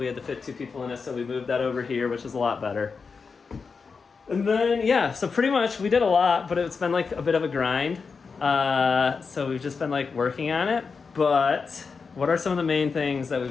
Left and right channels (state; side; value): quieter; right; 5.1 dB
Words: had to fit 2 people in it, so we moved that over here, which is a lot better. And then, yeah, so pretty much we did a lot, but it's been like a bit of a grind. So we've just been like working on it. But what are some of the main things that